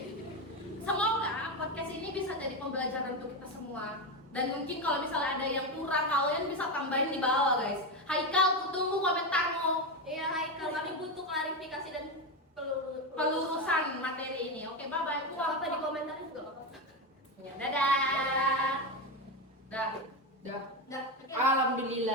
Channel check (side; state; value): both; normal; correlation 0.14